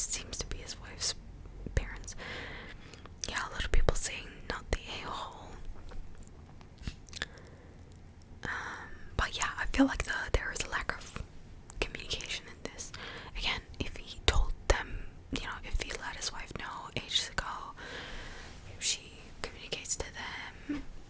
to be his wife's parents. Yeah, a lot of people saying not the a-hole. feel like there is a lack of communication in this. Again, if he told them, if he let his wife know ages ago, if she communicates to them,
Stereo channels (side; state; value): both; identical; correlation 1.00